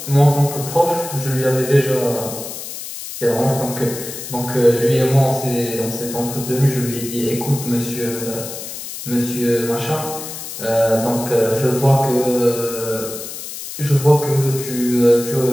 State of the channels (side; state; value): left; noise; hiss, 9 dB below the sound